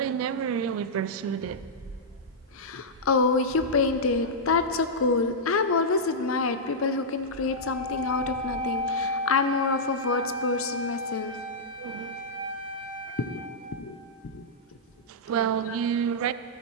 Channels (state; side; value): normal; both; correlation -0.09